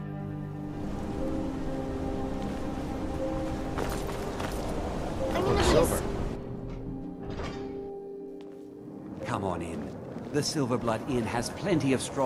Come on in. The Silverblood Inn has plenty of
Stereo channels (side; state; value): both; identical; correlation 1.00